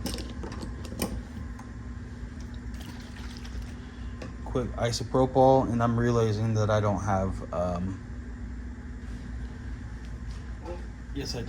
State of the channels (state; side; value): identical; both; correlation 1.00